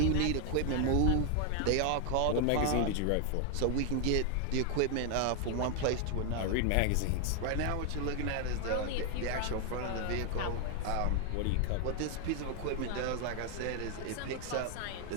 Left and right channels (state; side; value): different; both; correlation 0.00